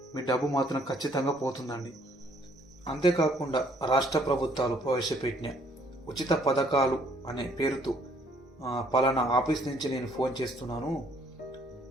మీ డబ్బు మాత్రం ఖచ్చితంగా పోతుందండి. అంతేకాకుండా రాష్ట్ర ప్రభుత్వాలు ప్రవేశపెట్టిన ఉచిత పథకాలు అనే పేరుతో పలానా ఆఫీస్ నుంచి నేను ఫోన్ చేస్తున్నాను,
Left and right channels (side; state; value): both; normal; correlation 0.63